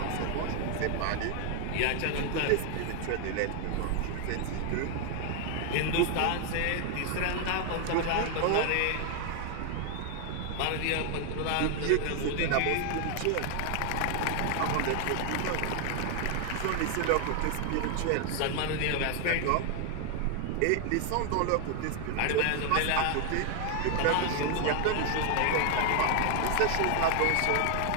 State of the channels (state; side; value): different; both; correlation 0.00